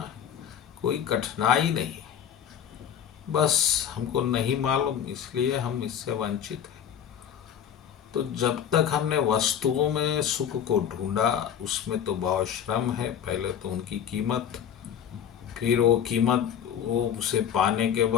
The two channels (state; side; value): quieter; right; 9.0 dB